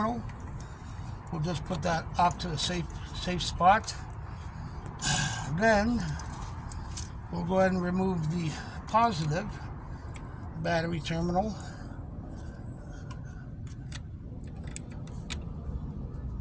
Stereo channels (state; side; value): identical; both; correlation 1.00